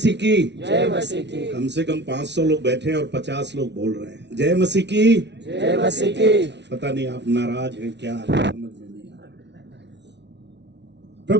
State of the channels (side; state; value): left; late; 0.50 ms